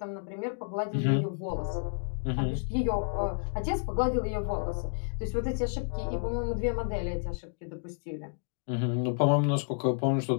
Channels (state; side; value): silent; right; digital silence